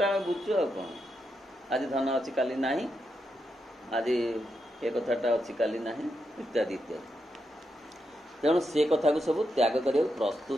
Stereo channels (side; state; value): both; normal; correlation 0.84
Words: आम बुझु आ कौन आज धन अच्छी काली ना आज ये कथाटा अच्छी काली ना इत्यादि इत्यादि तेणु से कथा को सब त्याग कर